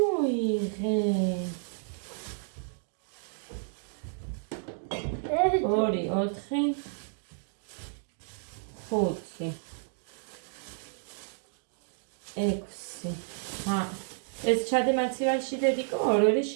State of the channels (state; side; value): silent; left; digital silence